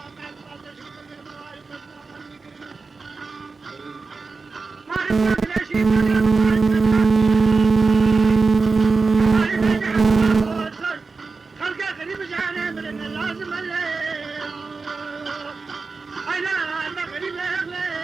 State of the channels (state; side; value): quieter; left; 4.3 dB